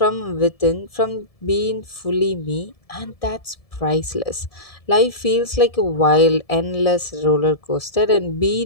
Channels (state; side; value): late; right; 1.7 ms